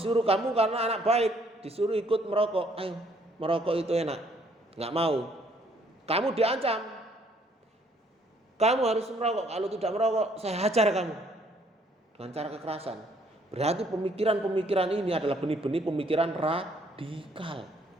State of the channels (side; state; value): both; normal; correlation 0.64